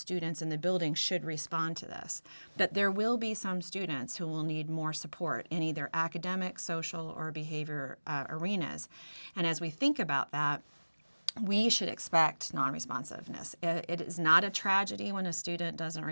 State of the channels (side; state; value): both; inverted; correlation -1.00